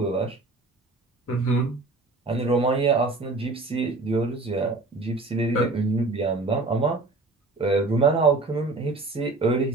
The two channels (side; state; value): left; quieter; 3.3 dB